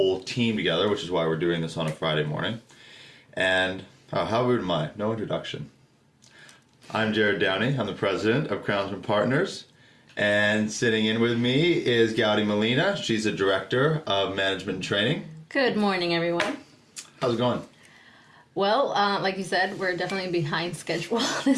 team together, which is why we're doing this on a Friday morning. And how rude am I? No introduction. I'm Jared Downey. I'm the president of Crownsmen Partners. And sitting in with me is Gaudi Molina. She's the director of management and training. Good morning, everyone. How's it going? Well, like you said, we're definitely behind schedule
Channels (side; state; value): both; identical; correlation 1.00